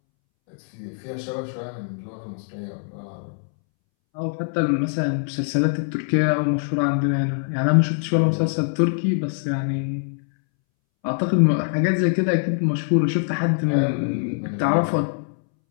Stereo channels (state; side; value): silent; right; 63 dB below the other